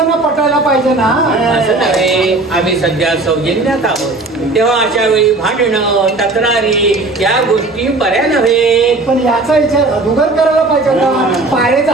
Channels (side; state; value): left; quieter; 3.2 dB